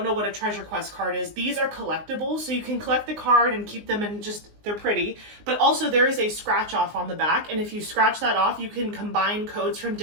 know what a treasure quest card is, these are collectibles. So you can collect the card and keep them and they're pretty. But also there is a scratch off on the back. And if you scratch that off, you can combine codes from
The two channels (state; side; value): late; left; 19 ms